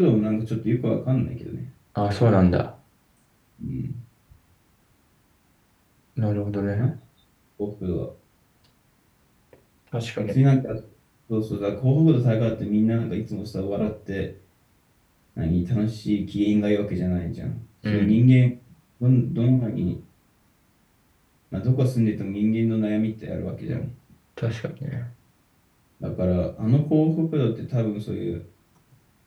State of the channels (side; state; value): both; identical; correlation 1.00